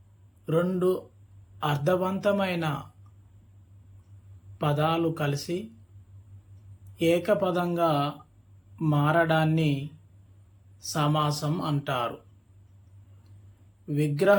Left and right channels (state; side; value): identical; both; correlation 1.00